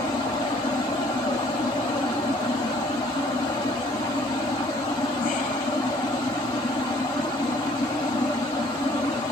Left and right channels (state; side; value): normal; both; correlation 0.59